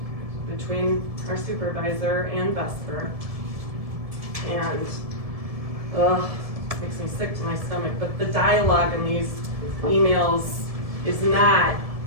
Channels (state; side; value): late; left; 1.7 ms